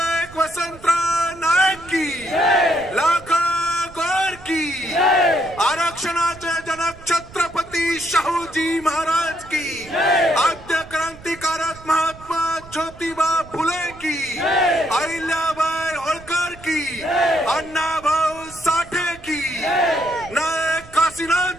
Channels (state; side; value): noise; right; rumble, 19 dB below the sound